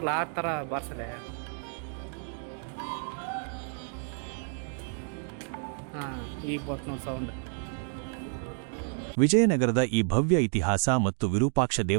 ಆ ಥರ ಬಾರಿಸಲೆ. ಹಾಂ, ಈಗ ಬತ್ತು ನೋಡಿ ಸೌಂಡ್. ವಿಜಯನಗರದ ಈ ಭವ್ಯ ಇತಿಹಾಸ ಮತ್ತು ವಿರೂಪಾಕ್ಷ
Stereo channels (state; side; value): silent; left; 58 dB below the other